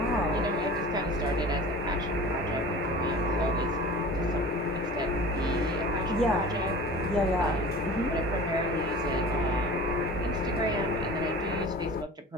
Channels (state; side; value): normal; both; correlation 0.38